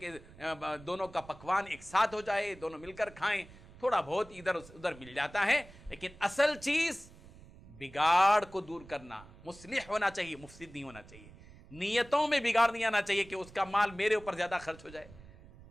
دونوں کا پکوان ایک ساتھ ہو جائے، دونوں مل کر کھائیں. تھوڑا بہت ادھر ادھر مل جاتا ہے، لیکن اصل چیز بگاڑ کو دور کرنا، مصلح ہونا چاہیے، مفسد نہیں ہونا چاہیے. نیتوں میں بگاڑ نہیں آنا چاہیے کہ اس کا مال میرے اوپر زیادہ خرچ ہو جائے،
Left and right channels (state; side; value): noise; right; rumble, 20 dB below the sound